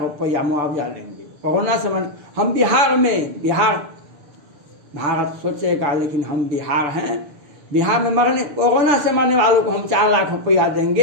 रुपया मुआवजा देंगे। कोरोना से हम बिहार में, भारत सोचेगा लेकिन हम बिहार हैं, बिहार में कोरोना से मरने वालों को हम 4 लाख रुपया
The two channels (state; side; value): late; left; 6.9 ms